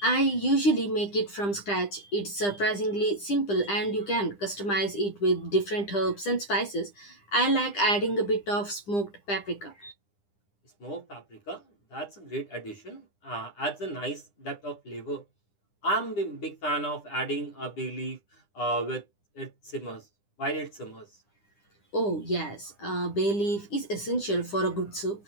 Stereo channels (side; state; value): right; late; 9.9 ms